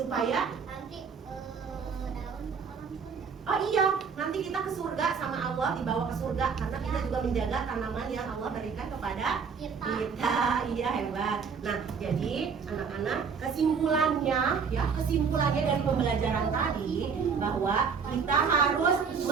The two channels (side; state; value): left; quieter; 5.9 dB